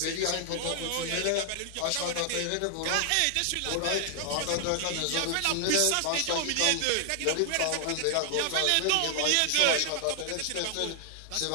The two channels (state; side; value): different; both; correlation 0.00